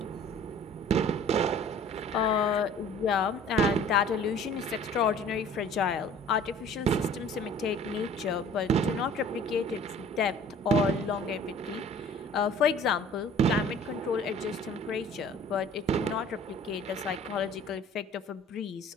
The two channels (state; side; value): normal; both; correlation 0.49